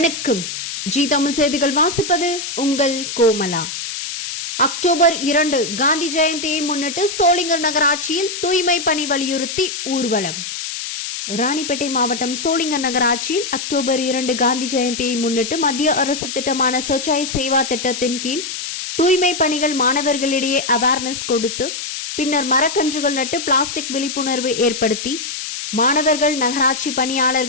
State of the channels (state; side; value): noise; left; hiss, 6 dB below the sound